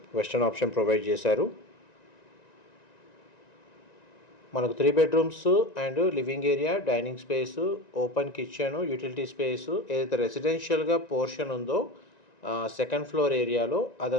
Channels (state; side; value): late; right; 1.9 ms